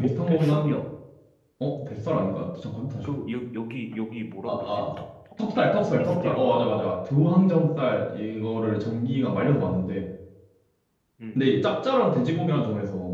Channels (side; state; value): both; identical; correlation 1.00